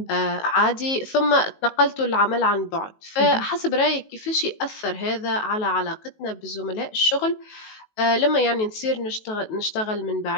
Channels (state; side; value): late; right; 19 ms